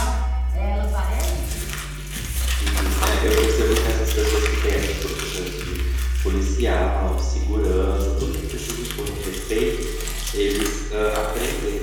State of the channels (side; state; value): both; identical; correlation 1.00